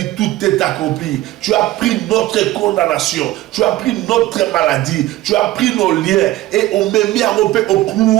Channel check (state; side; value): quieter; left; 16.2 dB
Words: tout est accompli. Tu as pris notre condamnation, tu as pris notre maladie, tu as pris nos liens et on m'a mis à romper au